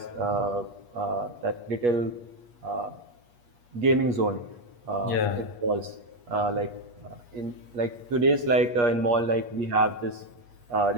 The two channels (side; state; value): left; late; 8.4 ms